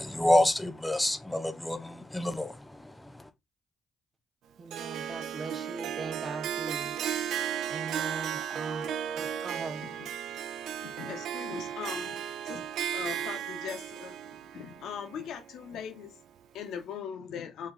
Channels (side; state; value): both; normal; correlation 0.78